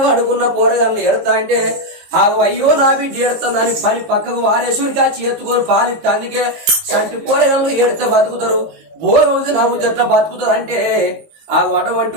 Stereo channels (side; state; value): left; late; 18 ms